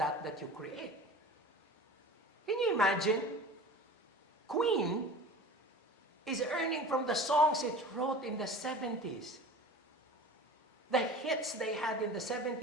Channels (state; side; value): normal; both; correlation 0.38